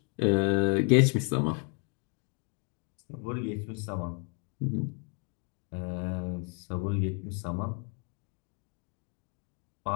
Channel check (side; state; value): right; quieter; 36.2 dB